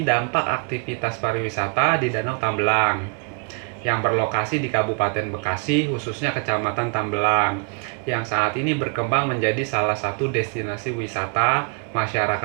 dampak aktivitas pariwisata di Danau Tambelang yang berlokasi di Kabupaten Bekasi, khususnya Kecamatan Tambelang, yang saat ini berkembang menjadi salah satu destinasi wisata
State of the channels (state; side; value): quieter; left; 38.5 dB